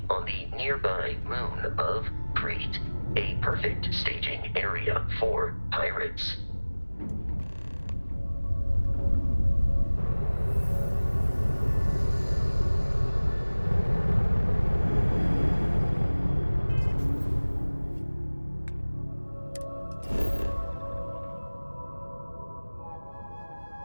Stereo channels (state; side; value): inverted; both; correlation -1.00